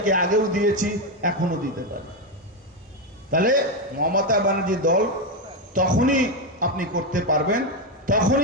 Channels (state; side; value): normal; both; correlation 0.08